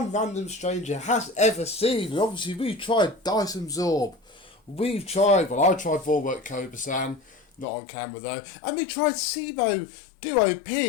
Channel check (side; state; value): right; drops out; at 7.7 s